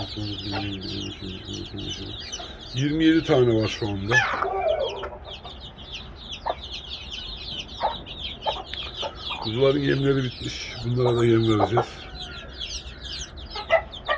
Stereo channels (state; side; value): identical; both; correlation 1.00